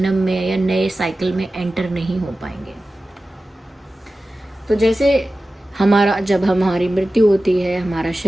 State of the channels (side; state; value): both; normal; correlation 0.95